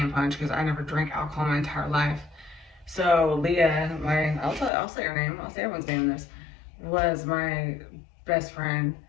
punch because I never drank alcohol my entire life. So Leah, I'll say her name. I'll say everyone's name in this. Was my best friend,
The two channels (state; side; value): drops out; right; at 4.7 s